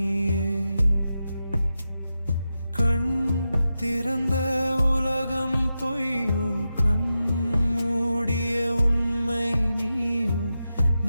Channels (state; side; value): inverted; both; correlation -0.90